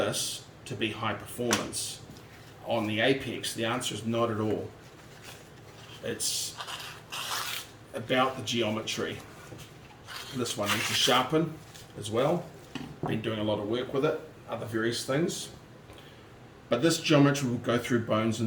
to be high performance on the apex? The answer is not at all. It's about the geometry. This one needs to sharpen as well. Been doing a lot of work with it, other various things. But this geometry will go through bones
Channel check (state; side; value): identical; both; correlation 1.00